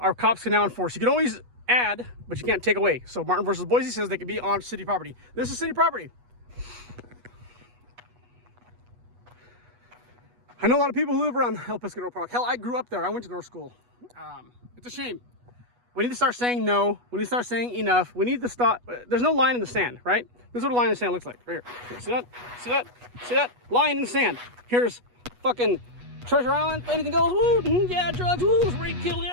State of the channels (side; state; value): left; late; 8.2 ms